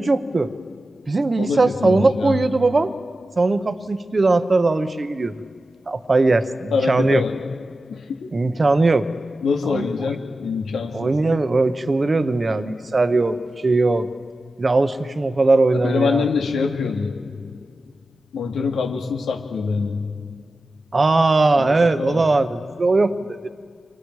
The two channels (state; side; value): normal; both; correlation 0.93